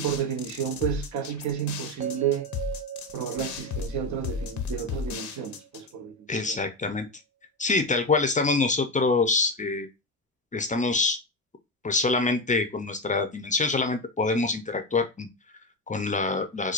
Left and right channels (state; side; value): normal; both; correlation 0.16